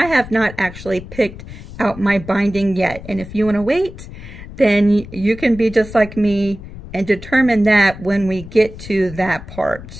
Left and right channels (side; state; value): left; noise; rumble, 14 dB below the sound